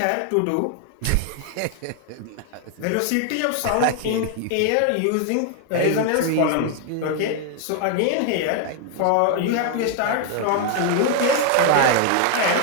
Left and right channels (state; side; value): different; both; correlation 0.00